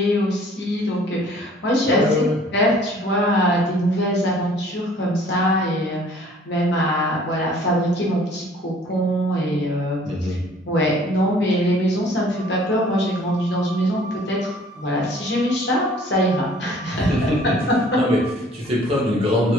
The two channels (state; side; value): normal; both; correlation 0.55